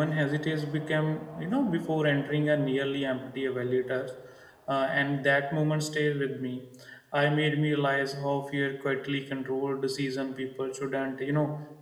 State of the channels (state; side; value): identical; both; correlation 1.00